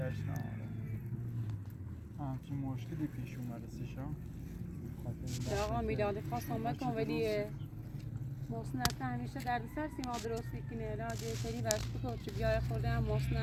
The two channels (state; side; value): identical; both; correlation 1.00